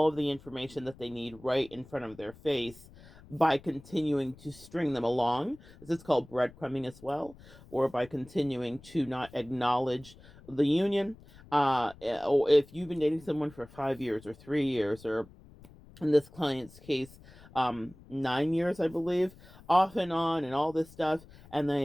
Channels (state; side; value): noise; left; rumble, 22 dB below the sound